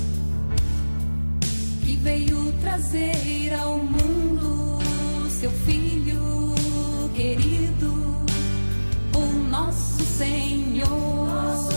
que veio trazer ao mundo seu filho querido, o nosso Senhor.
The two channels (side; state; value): both; inverted; correlation -1.00